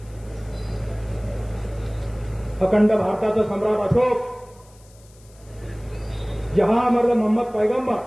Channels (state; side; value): noise; left; hiss, 28 dB below the sound